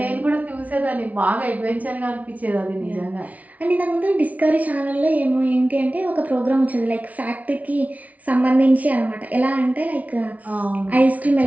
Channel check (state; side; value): late; left; 0.070 ms